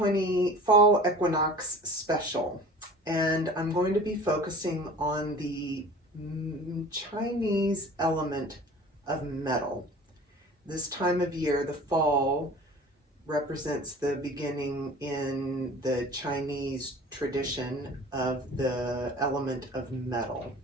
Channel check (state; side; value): normal; both; correlation 0.42